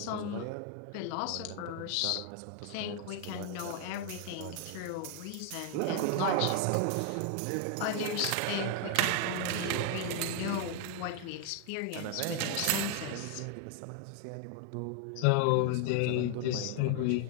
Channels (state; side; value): different; both; correlation 0.00